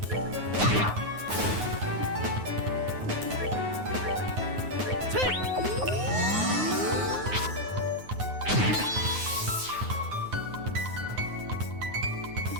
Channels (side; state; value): left; late; 9.5 ms